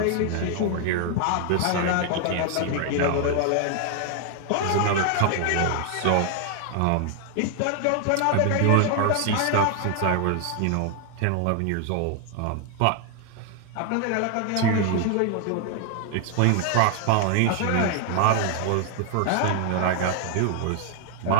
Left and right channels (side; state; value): both; different; correlation 0.00